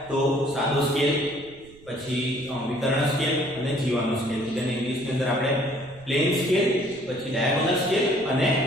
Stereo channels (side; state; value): right; noise; rumble, 23 dB below the sound